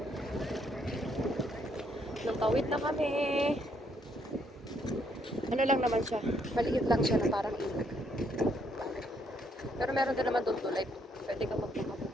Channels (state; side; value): normal; both; correlation 0.71